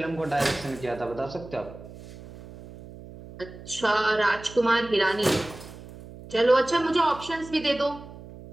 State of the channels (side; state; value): right; noise; hum, 16 dB below the sound